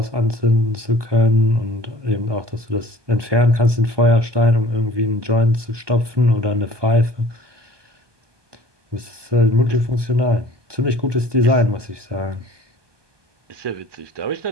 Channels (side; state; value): left; late; 1.2 ms